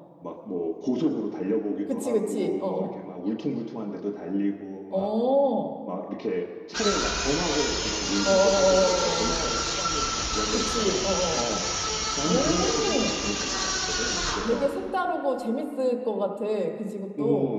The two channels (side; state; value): both; identical; correlation 1.00